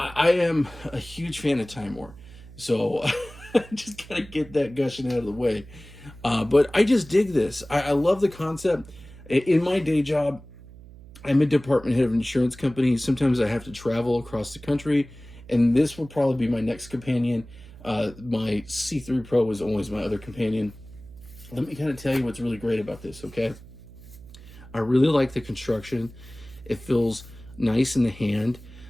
am a huge fan of TIMEMORE, so I just gotta get that gushing out of the way. But I just dig this. I love the concept. In my day job, I'm a department head of an insurance company. Sometimes I have to travel across the country, and this will probably be my next companion. My C3 Pro was always my other companion. Let me kind of tell you what's really great about this, okay? I really like the construction. It feels nice in the hand.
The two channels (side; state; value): right; noise; hum, 19 dB below the sound